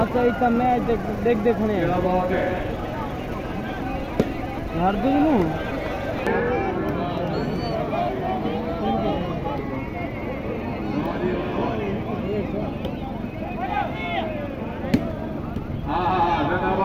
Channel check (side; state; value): both; identical; correlation 1.00